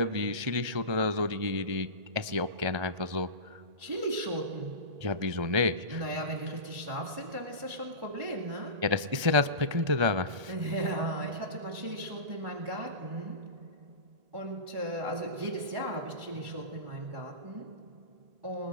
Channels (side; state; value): left; late; 1.8 ms